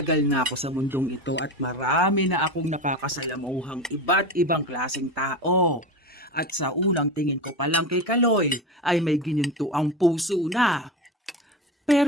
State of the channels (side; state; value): both; normal; correlation 0.25